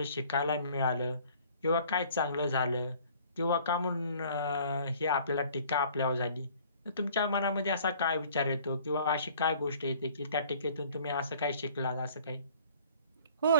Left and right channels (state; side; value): inverted; both; correlation -0.53